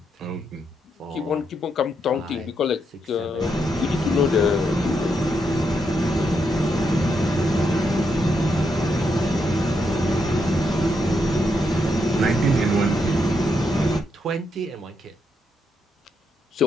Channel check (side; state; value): both; normal; correlation 0.80